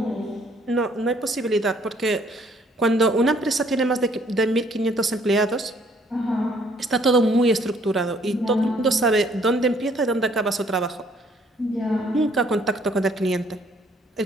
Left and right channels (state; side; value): normal; both; correlation 0.63